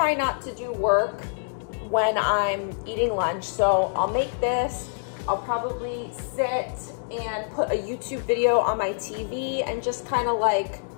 not to do work when I'm eating lunch. So I'll make this, I'll probably sit and put a YouTube video on my TV and just kind of like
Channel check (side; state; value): right; silent; digital silence